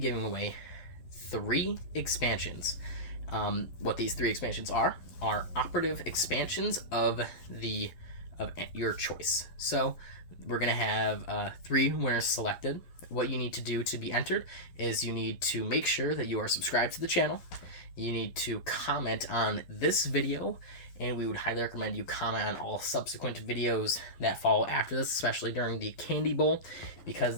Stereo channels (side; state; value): right; late; 12 ms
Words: away 3 expansions. What these 3 expansions are operative expansions of your choice. So we're going to have 3 winners selected. What you need to do to be entered is you need to make sure that you are subscribed to the channel. You need to comment on this video, and we would highly recommend you comment on all subsequent videos that follow after this, especially during the Candy Bowl, because